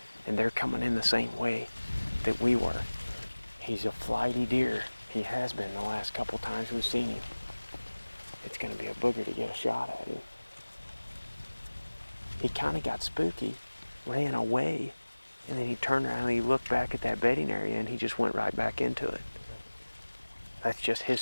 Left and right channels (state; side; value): inverted; both; correlation -1.00